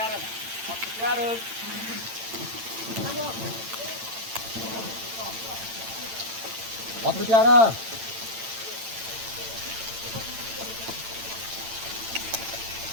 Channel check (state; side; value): late; left; 8.9 ms